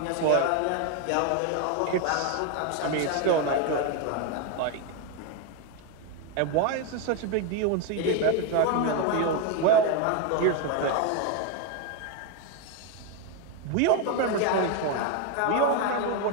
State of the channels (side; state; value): both; different; correlation 0.01